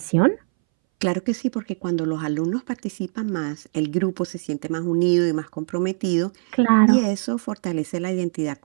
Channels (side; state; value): left; silent; 62 dB below the other